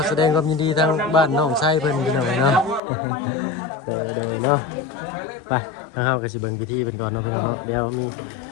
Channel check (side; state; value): right; drops out; at 2.8 s